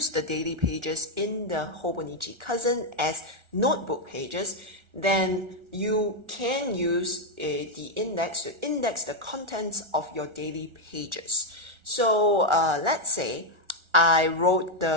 the daily pages in the Hobonichi Cousin as notebook pages, then you can use the index to index the contents of your daily pages. So let's say I wrote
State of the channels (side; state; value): left; late; 1.4 ms